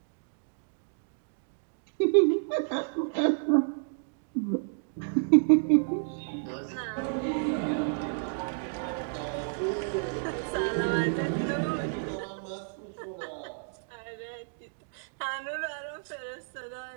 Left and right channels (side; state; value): left; silent; digital silence